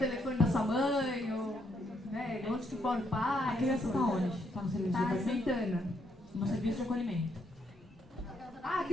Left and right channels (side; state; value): both; normal; correlation 0.75